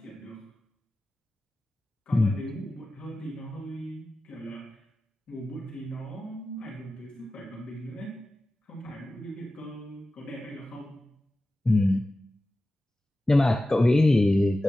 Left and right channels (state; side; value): normal; both; correlation 0.95